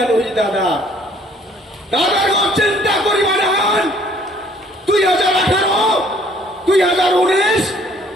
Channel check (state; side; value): normal; both; correlation 0.59